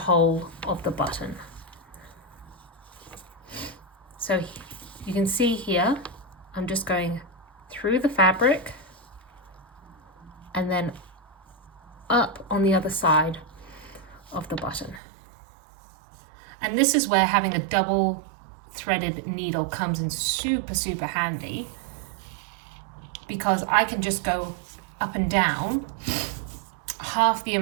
of the button. So you can see here, I'm just going through the fabric and then up on the other side of the button. And this is where having a double threaded needle comes in super handy, because I can just go up and down half the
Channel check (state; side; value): drops out; left; at 15.0 s